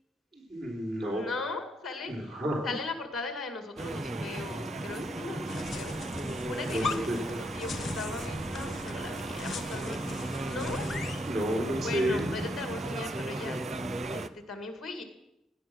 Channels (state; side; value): normal; both; correlation 0.74